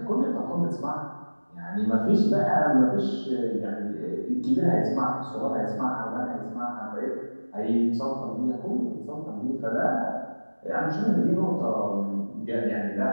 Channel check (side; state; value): both; inverted; correlation -1.00